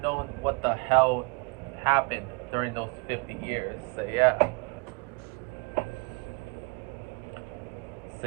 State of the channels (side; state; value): left; quieter; 30.4 dB